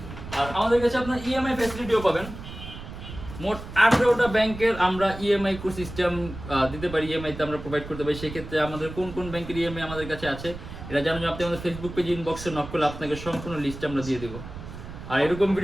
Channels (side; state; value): right; noise; rumble, 12 dB below the sound